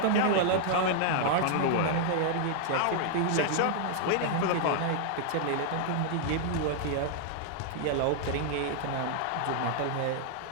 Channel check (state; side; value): different; both; correlation -0.01